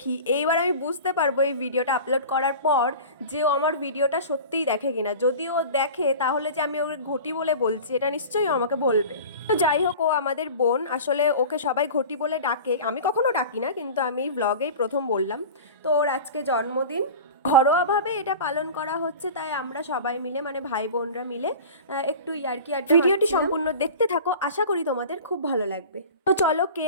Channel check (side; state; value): both; inverted; correlation -0.36